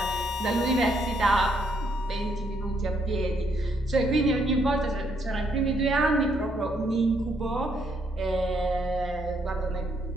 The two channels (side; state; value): both; normal; correlation 0.73